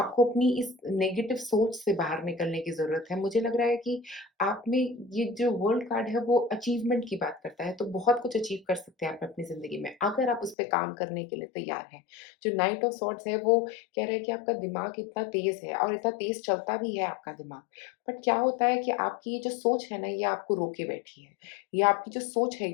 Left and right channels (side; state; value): right; drops out; at 10.6 s